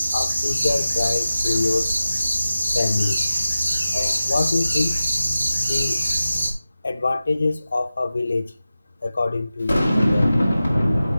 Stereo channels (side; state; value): both; inverted; correlation -0.94